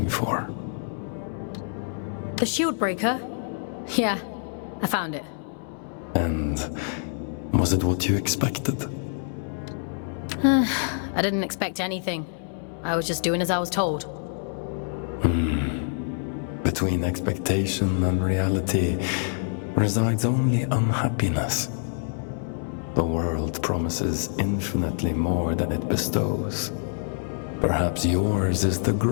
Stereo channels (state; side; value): silent; right; 61 dB below the other